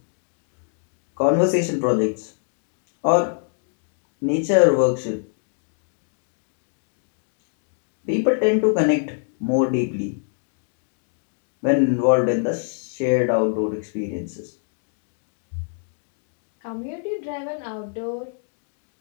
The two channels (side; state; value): right; silent; digital silence